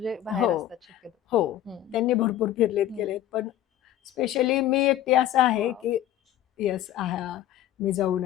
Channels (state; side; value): quieter; right; 12.4 dB